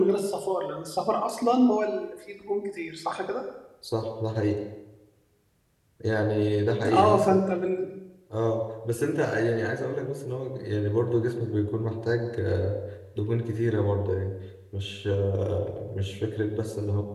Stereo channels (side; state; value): both; identical; correlation 1.00